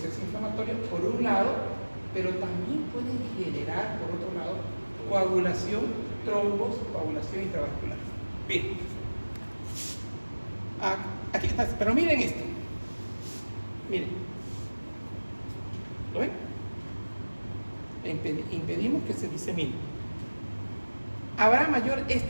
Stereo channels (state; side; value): inverted; both; correlation -1.00